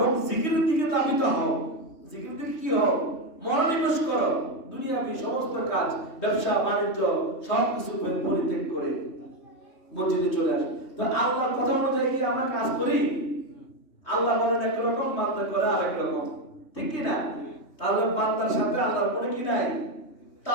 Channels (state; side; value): late; right; 3.2 ms